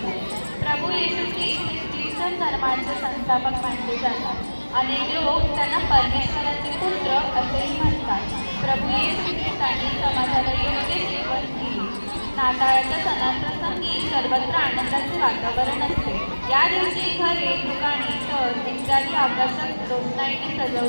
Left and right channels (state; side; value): inverted; both; correlation -1.00